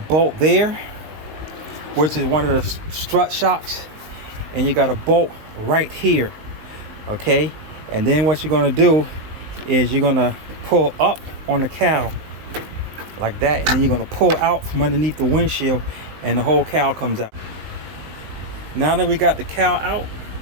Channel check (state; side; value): late; left; 19 ms